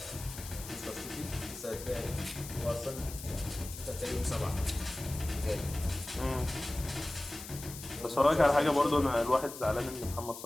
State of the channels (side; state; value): left; noise; hiss, 12 dB below the sound